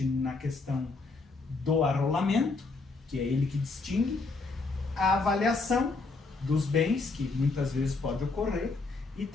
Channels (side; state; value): right; quieter; 3.8 dB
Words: na questão do arrolamento, que é ele que distingue, a avaliação dos bens, que muitas vezes pode ocorrer, e